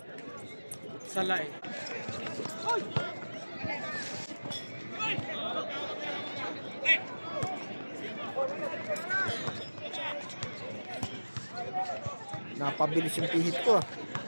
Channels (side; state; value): both; inverted; correlation -1.00